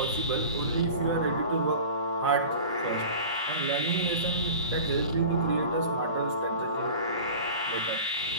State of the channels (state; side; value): inverted; both; correlation -0.38